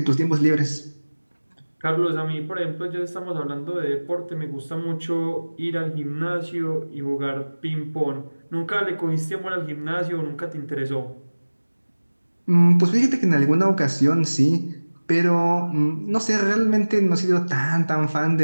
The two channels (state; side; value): inverted; both; correlation -1.00